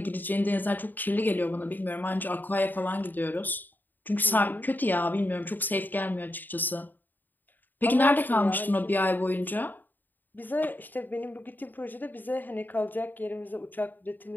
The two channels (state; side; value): late; right; 0.089 ms